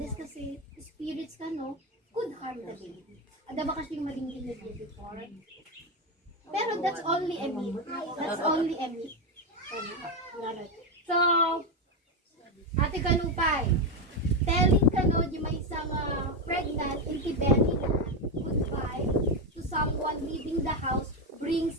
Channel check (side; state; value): both; normal; correlation 0.09